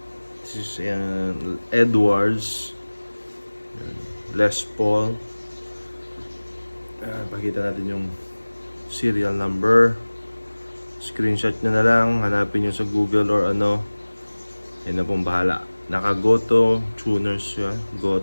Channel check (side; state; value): both; inverted; correlation -1.00